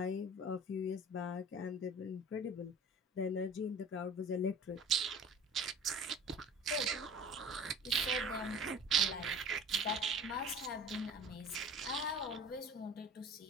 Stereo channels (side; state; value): both; normal; correlation 0.42